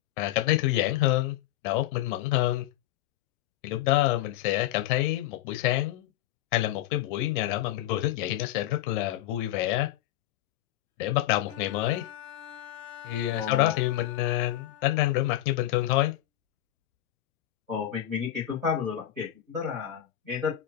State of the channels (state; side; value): quieter; right; 13.7 dB